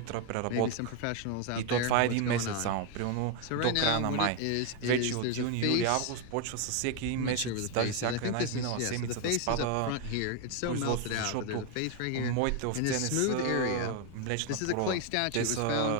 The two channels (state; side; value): different; both; correlation 0.01